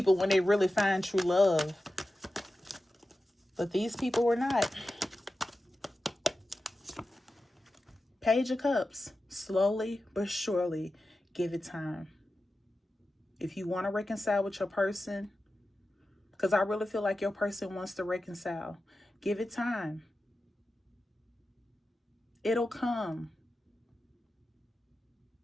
when they really find true love. But these people were not. Page of Cups. Slowly but surely, give it time. If you want to reconcile with your person, because I really feel like your person wants to reconcile, give it time. It'll come.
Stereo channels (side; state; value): both; normal; correlation 0.93